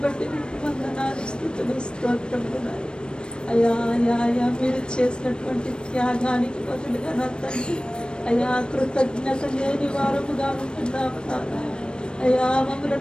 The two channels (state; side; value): late; right; 0.053 ms